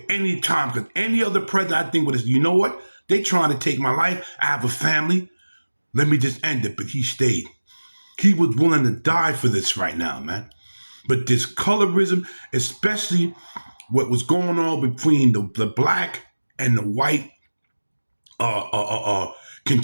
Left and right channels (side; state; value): both; inverted; correlation -1.00